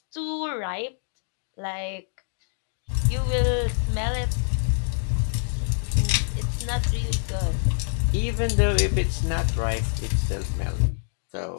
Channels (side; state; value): right; silent; digital silence